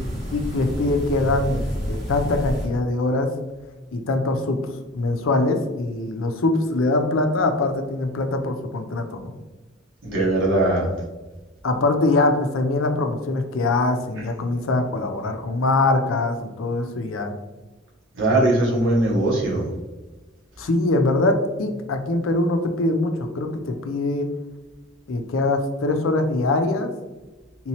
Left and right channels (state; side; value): normal; both; correlation 0.35